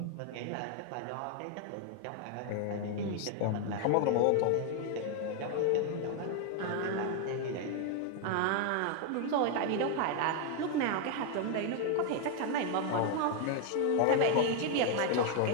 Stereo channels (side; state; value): both; different; correlation 0.01